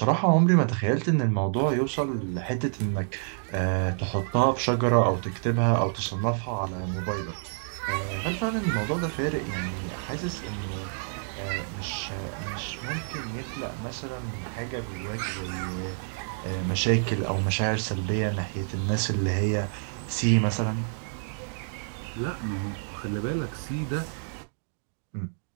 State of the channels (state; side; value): silent; left; digital silence